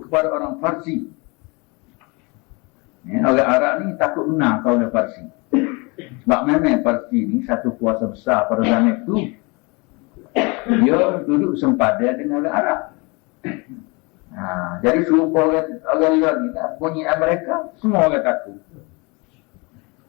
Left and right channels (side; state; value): right; quieter; 28.3 dB